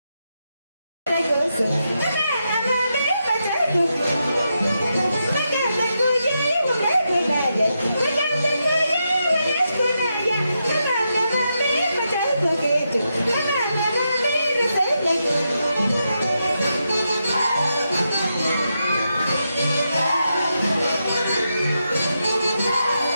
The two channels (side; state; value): both; inverted; correlation -0.85